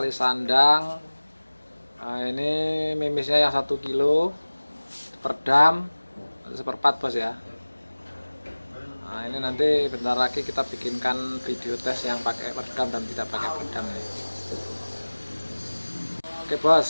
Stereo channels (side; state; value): both; inverted; correlation -1.00